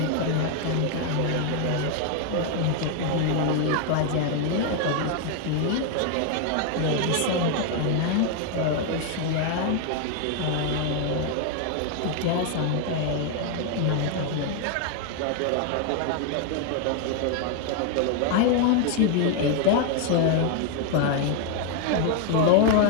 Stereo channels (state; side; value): different; both; correlation 0.01